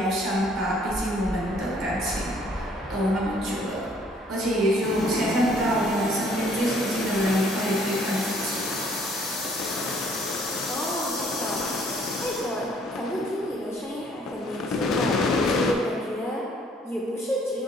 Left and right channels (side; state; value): both; normal; correlation 0.61